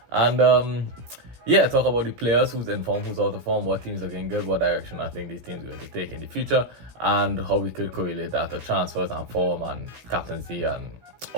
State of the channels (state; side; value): late; left; 17 ms